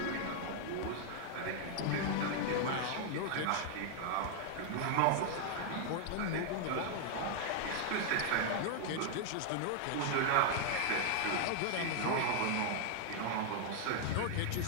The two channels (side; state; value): both; different; correlation 0.00